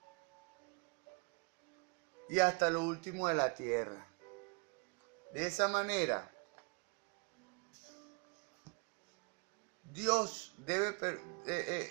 y hasta lo último de la tierra. De esa manera, Dios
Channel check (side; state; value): left; quieter; 34.4 dB